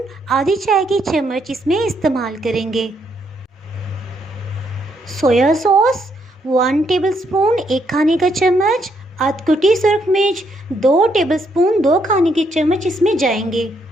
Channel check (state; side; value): normal; both; correlation 0.74